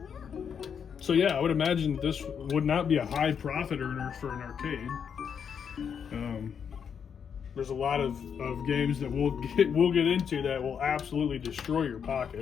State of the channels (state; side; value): quieter; right; 7.3 dB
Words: So yeah, I would imagine this would not be a high profit earner for an arcade. There's a lot of games that we'll get into that will absolutely destroy your